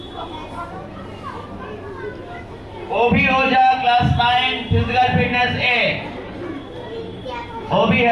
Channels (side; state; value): both; identical; correlation 1.00